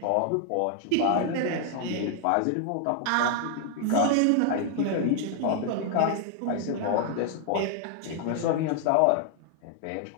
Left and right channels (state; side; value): different; both; correlation 0.00